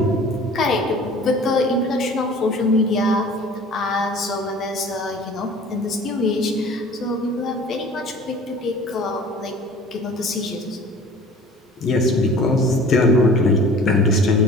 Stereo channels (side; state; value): both; normal; correlation 0.45